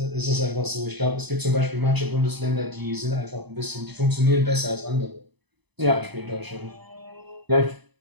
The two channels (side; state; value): left; late; 0.99 ms